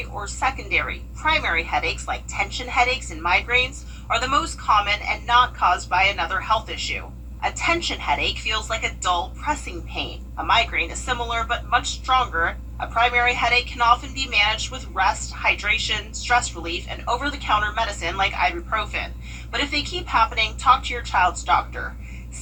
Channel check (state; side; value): identical; both; correlation 1.00